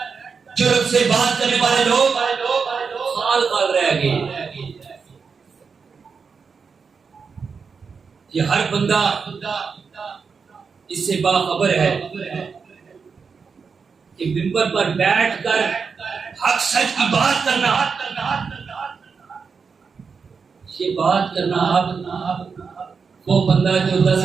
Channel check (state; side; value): quieter; left; 5.5 dB